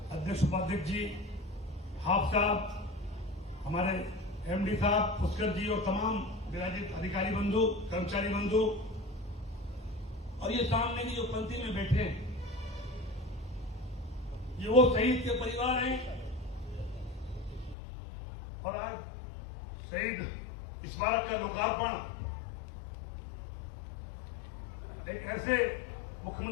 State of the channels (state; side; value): drops out; right; at 17.8 s